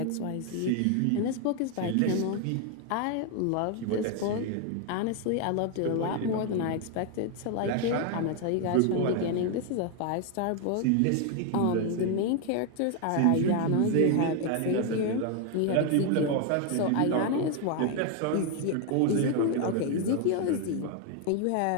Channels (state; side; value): different; both; correlation 0.01